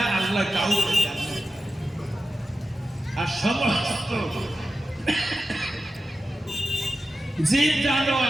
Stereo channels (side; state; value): both; normal; correlation 0.92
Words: আল্লাহ কাউকে জানে, আর সমস্ত জীব